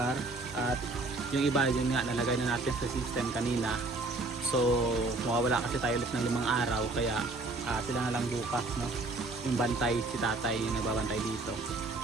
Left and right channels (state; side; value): quieter; left; 3.2 dB